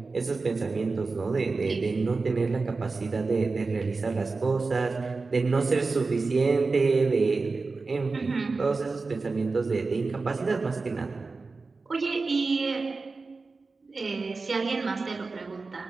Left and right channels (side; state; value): left; quieter; 4.0 dB